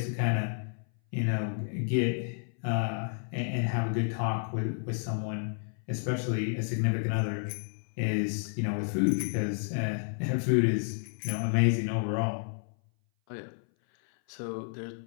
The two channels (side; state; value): right; silent; 57 dB below the other